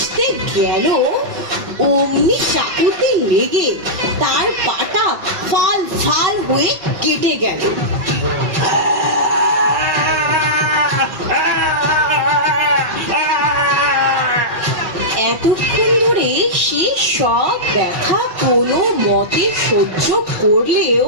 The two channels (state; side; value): late; left; 5.3 ms